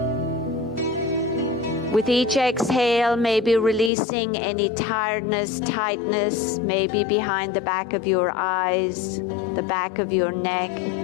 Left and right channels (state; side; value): drops out; right; at 3.9 s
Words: With each exhale, maybe releasing any tiredness, tightness, maybe behind the back of your eyes, the back of your neck.